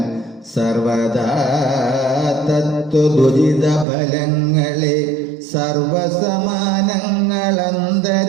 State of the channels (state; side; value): drops out; left; at 3.9 s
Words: സർവദാ തത്വദുരിത ഫലങ്ങളെ